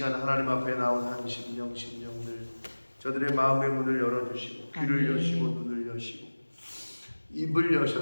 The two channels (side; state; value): both; inverted; correlation -1.00